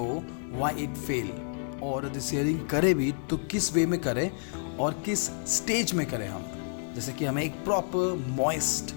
व्हाई इट फेल, और यदि सीयरिंग करे भी तो किस वे में करें और किस स्टेज में करें हम, जैसे कि हमें एक प्रॉपर मॉइस्ट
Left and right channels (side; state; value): right; silent; 58 dB below the other